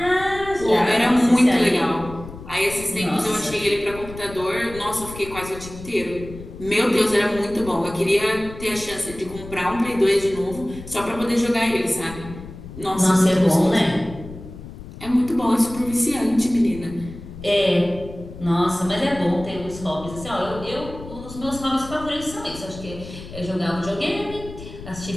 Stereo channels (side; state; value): left; noise; rumble, 14 dB below the sound